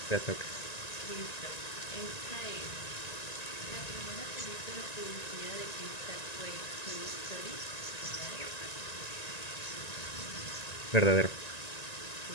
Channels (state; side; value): late; right; 1.9 ms